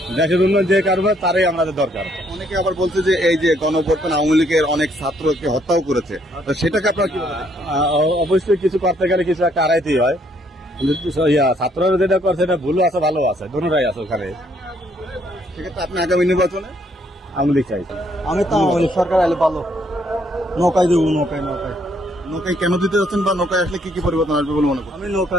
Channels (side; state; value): both; normal; correlation 0.69